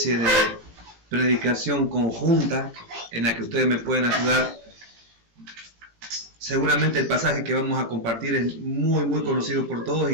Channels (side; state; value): left; late; 17 ms